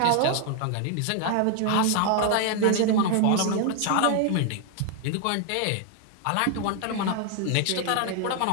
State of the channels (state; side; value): different; both; correlation 0.00